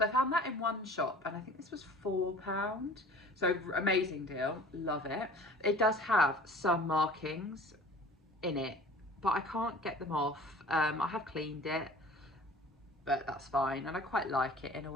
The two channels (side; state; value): both; normal; correlation 0.45